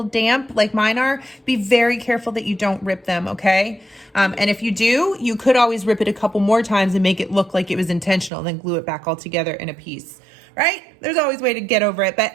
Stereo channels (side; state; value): left; drops out; at 8.3 s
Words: damp like mine are, be very careful that you don't rip them, okay? And if you do, you could always rip it a couple more times and make it look like it was intentional, then glue it back all together in a piece. Right? There's always a way to get over it. But